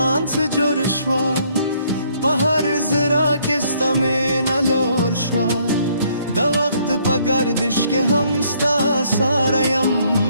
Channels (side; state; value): both; inverted; correlation -0.66